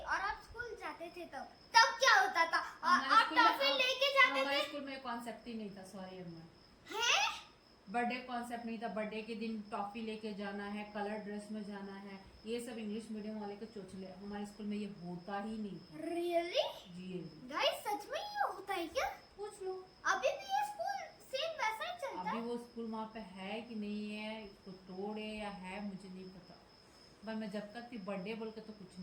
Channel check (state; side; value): identical; both; correlation 1.00